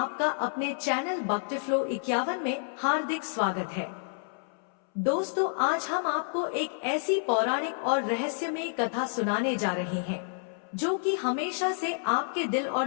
अपने चैनल भक्तिफ्लो 51 में हार्दिक स्वागत है। दोस्तों, आज हम आपको एक ऐसी पौराणिक और रहस्यमय कथा सुनाने जा रहे हैं जो कि हमेशा से आपके दिल और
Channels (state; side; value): silent; right; 58 dB below the other